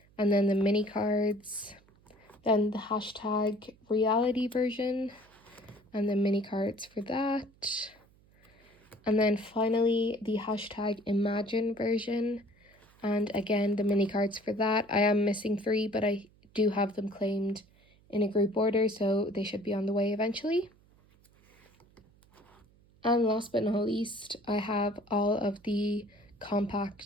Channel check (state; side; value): noise; right; hum, 30 dB below the sound